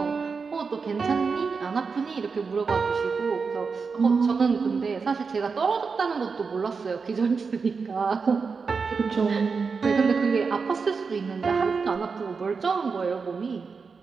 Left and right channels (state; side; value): quieter; left; 5.1 dB